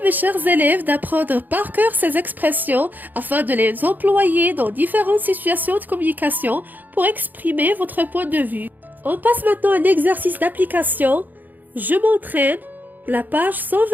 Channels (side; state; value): left; late; 0.085 ms